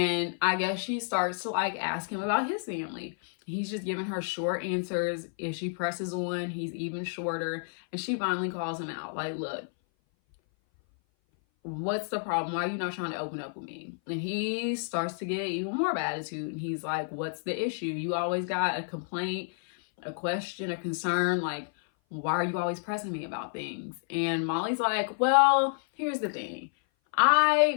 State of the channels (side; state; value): right; silent; 56 dB below the other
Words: I guess she starts to like ask him about his family. He's just giving her short answers. If she presses on, he's even shorter. And she finally calls him out. Like, look, what's the problem? Why are you not trying to open up with me? And he starts to get even more of an attitude. And he's like, what's the issue? You always got a complaint, a question, a concern. Like, why are you always pressing me about things? And Molly's like, well, here's the thing.